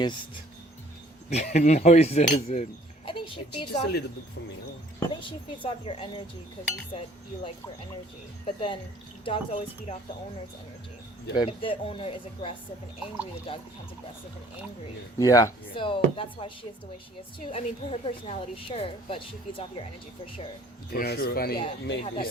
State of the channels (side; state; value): both; normal; correlation 0.56